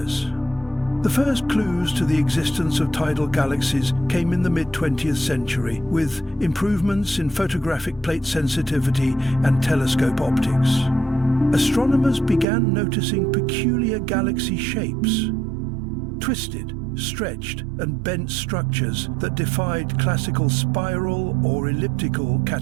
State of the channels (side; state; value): left; drops out; at 12.5 s